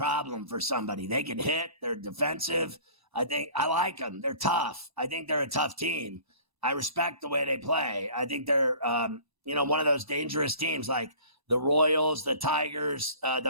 for somebody. They can hit. They're defensive. I like them. They're tough. I think they're a tough team. I respect the way they play. I think they're, one of those dangerous teams like the Royals, the Tigers,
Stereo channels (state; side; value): late; left; 1.0 ms